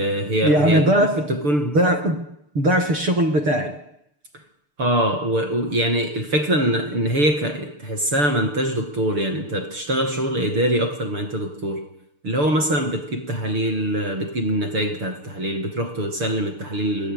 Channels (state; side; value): late; left; 6.7 ms